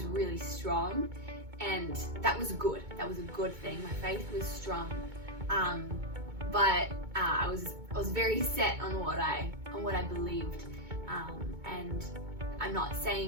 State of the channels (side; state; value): left; late; 2.2 ms